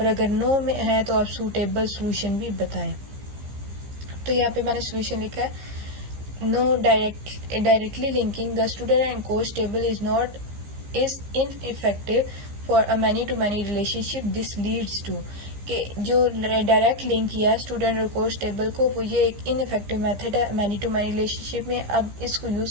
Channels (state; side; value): late; left; 15 ms